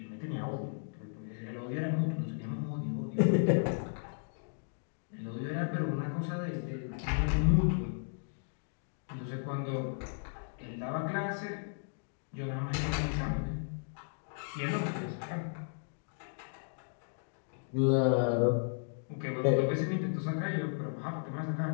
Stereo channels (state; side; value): silent; right; digital silence